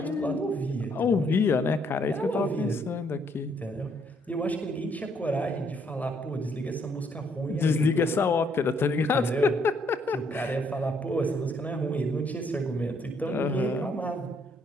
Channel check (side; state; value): both; normal; correlation 0.69